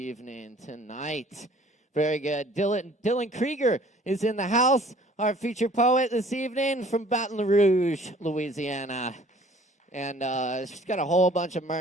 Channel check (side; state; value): both; normal; correlation 0.53